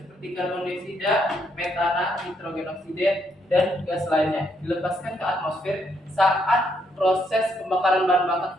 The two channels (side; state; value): both; normal; correlation 0.74